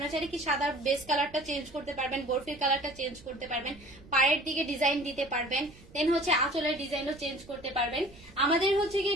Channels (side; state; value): right; noise; rumble, 22 dB below the sound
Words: চাইলে কি সাদা বেস কালারটা চেঞ্জ করতে পারবেন, বরফির কালারটা চেঞ্জ করতে পারবেন, পায়ের দিকে ডিজাইন দিতে পারবেন, দেন হচ্ছে আঁচলের ডিজাইনও চেঞ্জ করতে পারবেন। আমাদের হচ্ছে গিয়ে